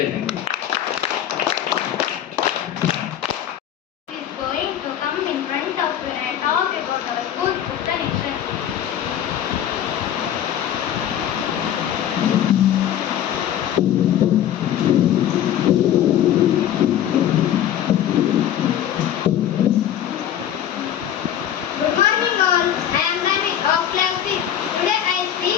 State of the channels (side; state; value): right; quieter; 10.6 dB